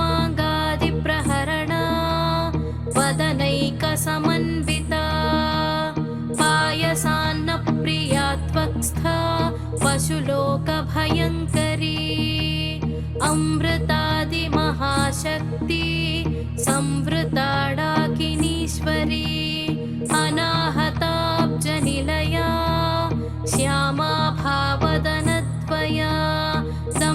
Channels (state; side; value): identical; both; correlation 1.00